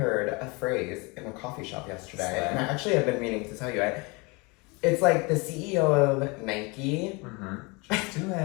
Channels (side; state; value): right; quieter; 27.7 dB